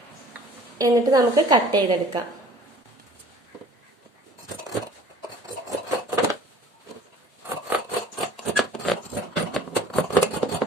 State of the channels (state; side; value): normal; both; correlation 0.50